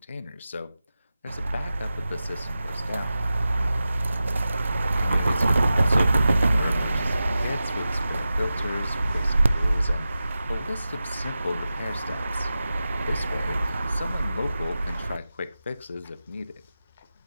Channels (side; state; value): both; inverted; correlation -0.93